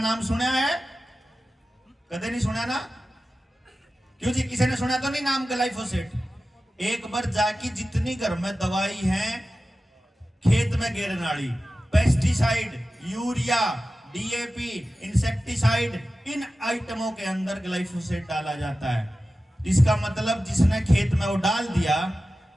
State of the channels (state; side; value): normal; both; correlation 0.94